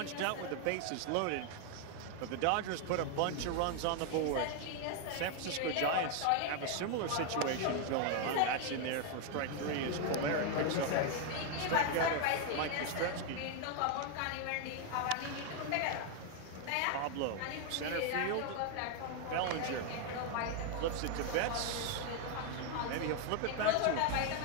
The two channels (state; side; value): different; both; correlation 0.00